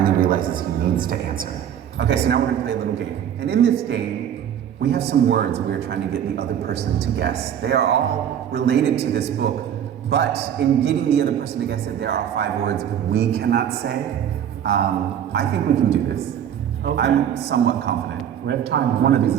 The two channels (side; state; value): left; quieter; 9.5 dB